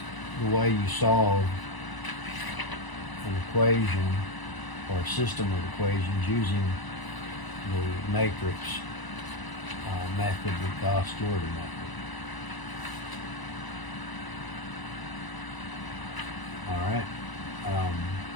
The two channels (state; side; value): late; right; 1.0 ms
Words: the way you solve an equation or a system of equations using the matrix method, the Gauss-Jordan method. All right.